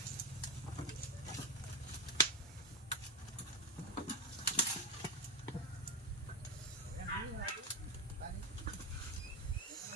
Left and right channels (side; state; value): both; normal; correlation 0.11